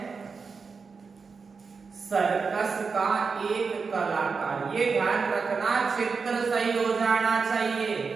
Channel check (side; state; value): left; quieter; 5.0 dB